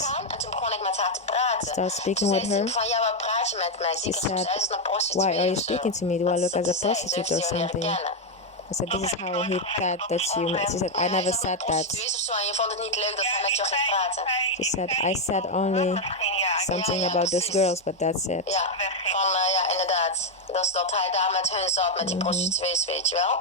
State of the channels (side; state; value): both; normal; correlation 0.03